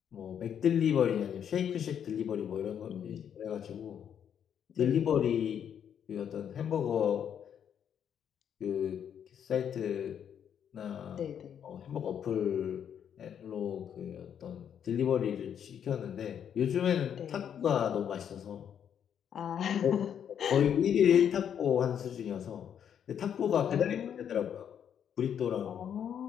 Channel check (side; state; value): right; quieter; 8.7 dB